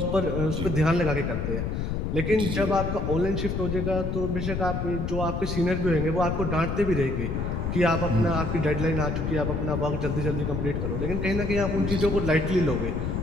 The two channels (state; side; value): noise; left; rumble, 2 dB below the sound